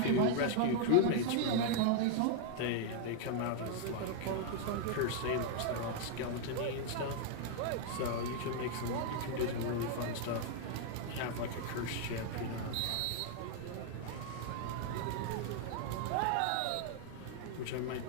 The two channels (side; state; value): both; different; correlation 0.00